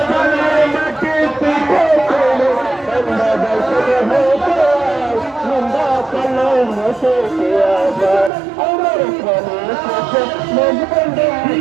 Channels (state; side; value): drops out; left; at 8.3 s